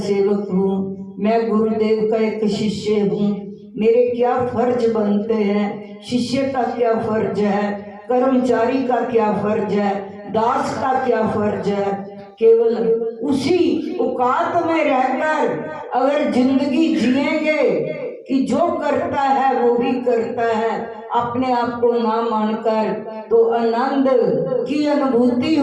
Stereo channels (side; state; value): both; identical; correlation 1.00